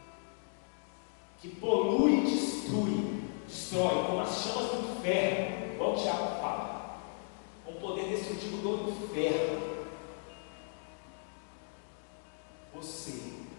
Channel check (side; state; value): right; silent; 54 dB below the other